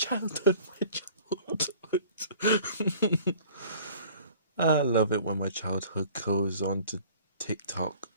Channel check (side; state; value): both; inverted; correlation -0.49